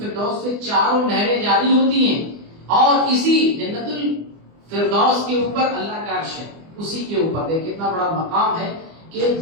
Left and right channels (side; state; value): left; late; 24 ms